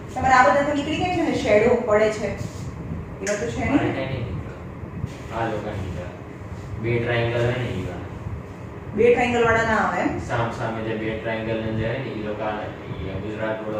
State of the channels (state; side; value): identical; both; correlation 1.00